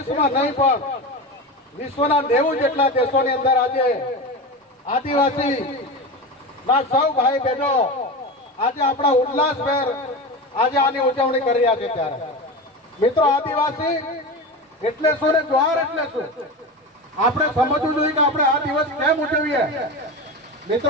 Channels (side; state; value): both; normal; correlation 0.25